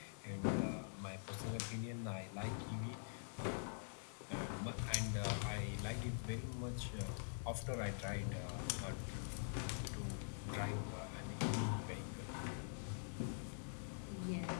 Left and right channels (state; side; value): silent; right; digital silence